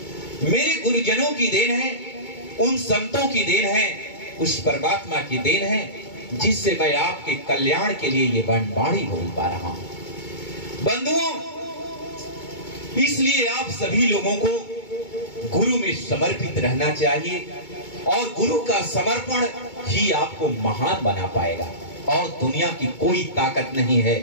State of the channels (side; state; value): right; late; 2.2 ms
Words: मेरे गुरुजनों की देन है, उन संतों की देन है, उस परमात्मा की देन है, जिससे मैं आपके कल्याण के लिए ये वाणी बोल पा रहा हूं। बंधुओं, इसलिए आप सभी लोगों को गुरु में समर्पित रहना चाहिए, और गुरु का समर्पण ही आपको महान बना पाएगा, और दुनिया की कोई ताकत नहीं है